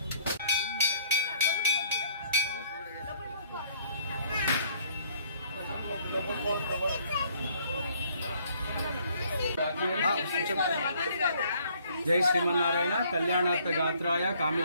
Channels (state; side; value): inverted; both; correlation -0.61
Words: जय श्रीमन्नारायण कल्याणार्थ गात्राय